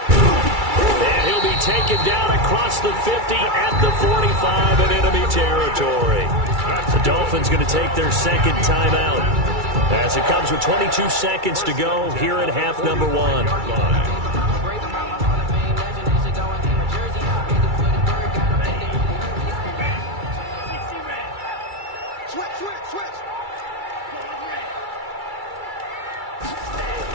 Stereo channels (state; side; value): late; left; 2.3 ms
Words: And he'll be taken down across the 50 at the 45 in enemy territory. The Dolphins going to take their second timeout as it comes with 22 seconds to go here in half number 1.